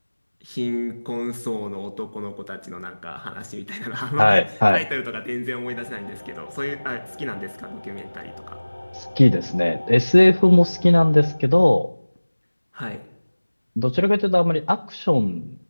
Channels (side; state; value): both; inverted; correlation -1.00